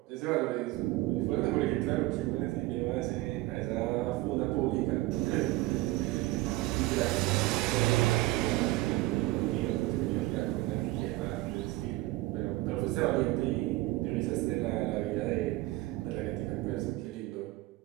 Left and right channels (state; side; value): quieter; left; 18.8 dB